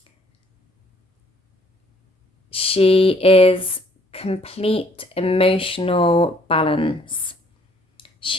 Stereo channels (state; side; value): normal; both; correlation 0.62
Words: She is complete emotional balance.